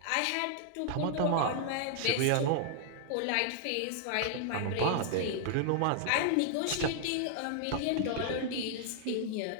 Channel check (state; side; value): different; both; correlation -0.01